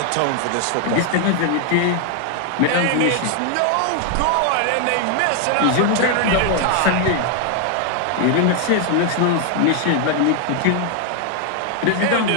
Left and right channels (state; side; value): different; both; correlation 0.00